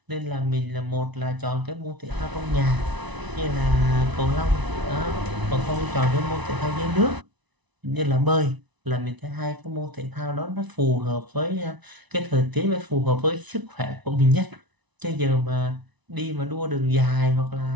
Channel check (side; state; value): left; late; 1.0 ms